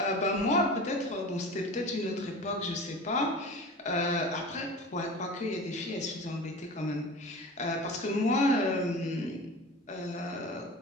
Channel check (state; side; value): normal; both; correlation 0.35